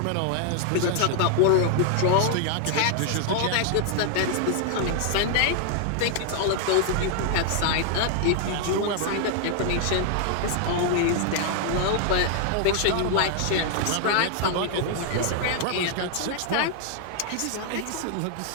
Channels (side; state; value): both; different; correlation 0.00